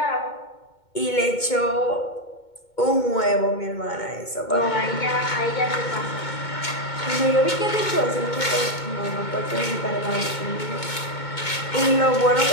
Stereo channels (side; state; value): right; late; 2.2 ms